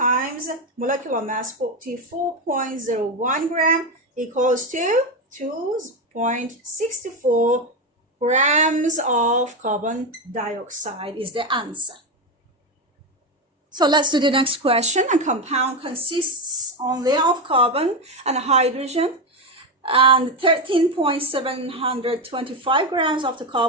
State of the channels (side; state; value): both; normal; correlation 0.12